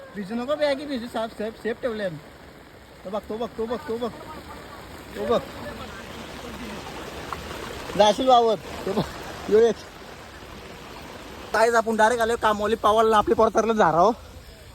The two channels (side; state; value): both; identical; correlation 1.00